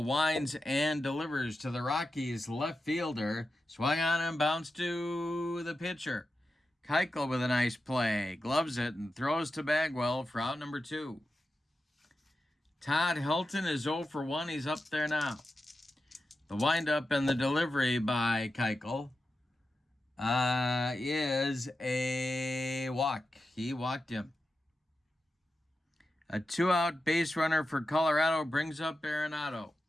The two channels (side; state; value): both; normal; correlation 0.91